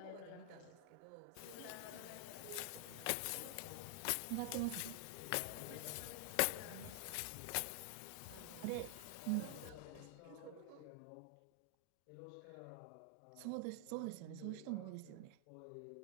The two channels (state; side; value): different; both; correlation 0.00